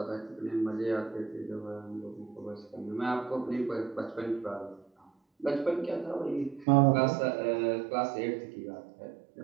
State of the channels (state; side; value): drops out; left; at 6.7 s